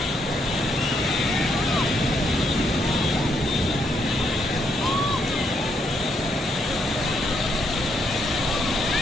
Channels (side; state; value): both; normal; correlation 0.75